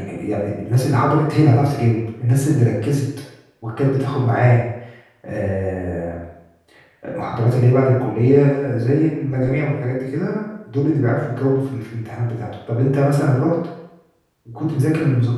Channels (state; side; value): identical; both; correlation 1.00